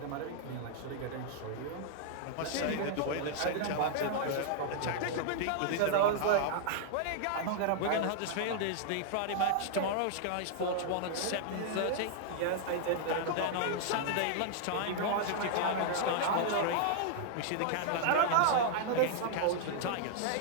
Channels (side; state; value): both; different; correlation -0.01